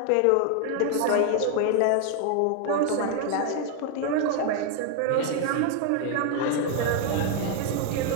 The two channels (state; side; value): different; both; correlation 0.00